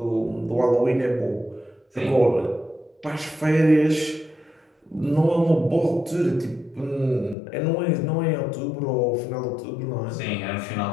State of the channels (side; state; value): right; drops out; at 7.4 s